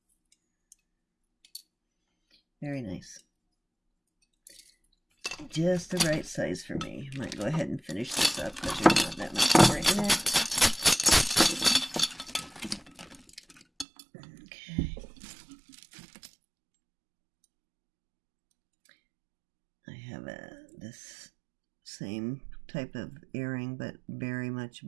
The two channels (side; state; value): left; drops out; at 13.9 s